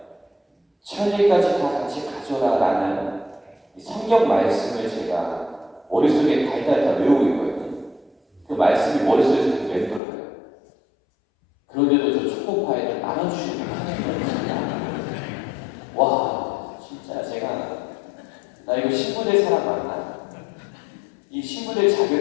천리까지 다 같이 가져라라는 이 성경 말씀을 제가 머릿속에 달달 다 외우고 있거든요. 그 말씀이 머릿속에서 계속 맴돌아요. 그런데도 저 초코파이를 나눠주지 못하는 거예요. 와, 진짜 나 이거 신부될 사람 맞나? 이 신부될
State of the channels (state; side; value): drops out; right; at 10.0 s